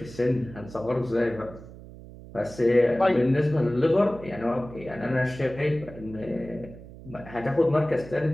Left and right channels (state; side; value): noise; right; hum, 17 dB below the sound